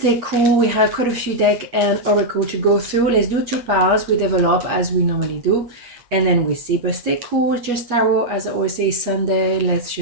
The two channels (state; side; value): late; left; 8.3 ms